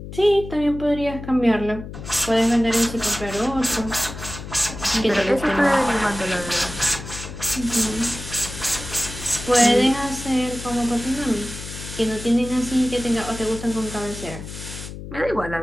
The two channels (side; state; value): left; noise; hum, 11 dB below the sound